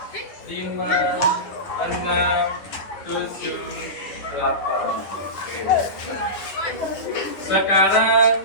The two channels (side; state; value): right; late; 10 ms